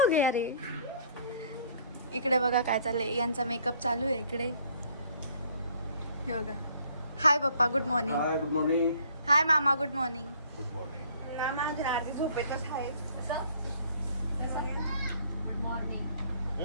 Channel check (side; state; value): both; inverted; correlation -0.59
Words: गया रे. इकडे बघा काय चाललंय. यांचा मेकअप चालू आहे इकडे. हे बघा. हाय पप्पा good morning. Hi good morning. Hi मामा गुड मॉर्निंग. Good morning. मामा अजून आधी झोपेतच आहे. Good morning.